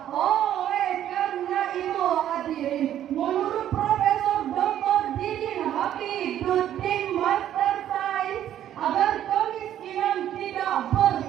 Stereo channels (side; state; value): left; quieter; 11.3 dB